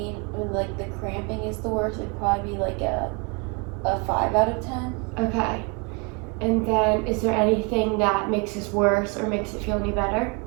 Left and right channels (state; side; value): quieter; left; 31.4 dB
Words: when like the cramping is the worst, it'd probably be like a 5 out of 10. Okay. And then is there anything that makes this worse or makes it feel any better?